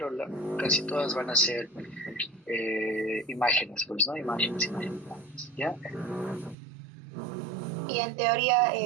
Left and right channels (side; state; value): left; drops out; at 6.6 s